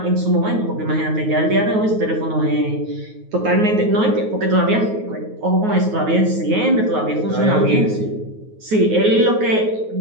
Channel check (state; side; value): late; left; 9.4 ms